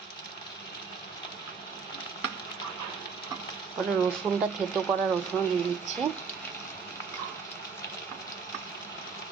পরে রসুনটা থেতো করা রসুন দিয়ে দিচ্ছি।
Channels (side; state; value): left; quieter; 5.6 dB